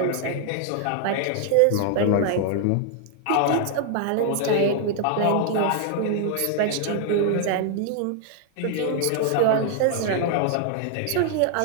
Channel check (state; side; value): different; both; correlation 0.00